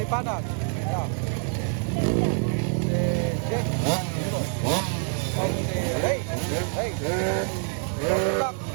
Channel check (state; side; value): silent; left; 57 dB below the other